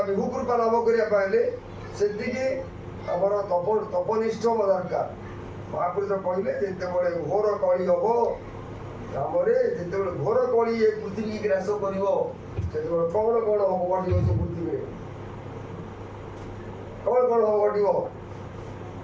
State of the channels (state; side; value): identical; both; correlation 1.00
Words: विभु कृपा लाभ करने से आमर तपनिष्ठ दरकार महापुरुष कहले जिते घोर कली हम आम जिते घोर कली ये पृथ्वी ग्रास कर कौन कौन हम घट से पृथ्वी कौन कौन हम घट